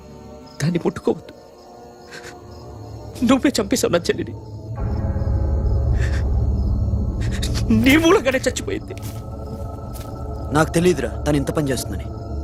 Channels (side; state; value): both; identical; correlation 1.00